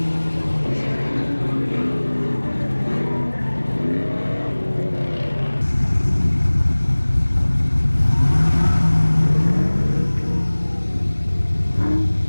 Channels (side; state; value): both; inverted; correlation -1.00